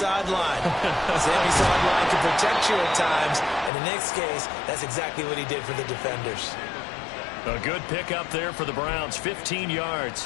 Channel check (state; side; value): drops out; right; at 3.7 s